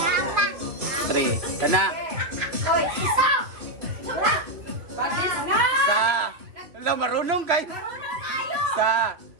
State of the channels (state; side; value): late; left; 3.0 ms